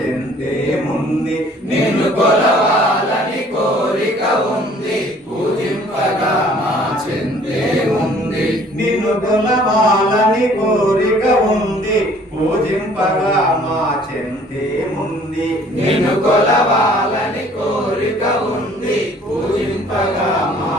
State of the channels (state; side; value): normal; both; correlation 0.55